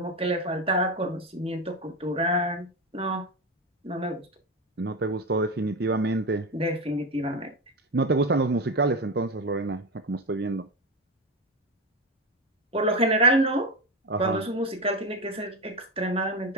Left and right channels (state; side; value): normal; both; correlation 0.17